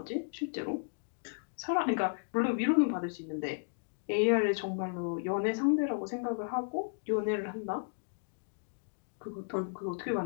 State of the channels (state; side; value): silent; right; digital silence